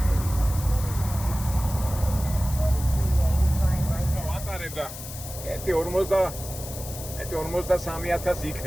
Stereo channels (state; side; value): noise; left; hiss, 11 dB below the sound